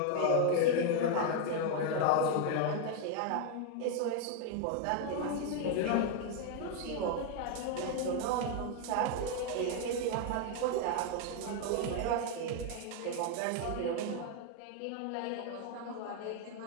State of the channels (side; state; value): both; different; correlation 0.01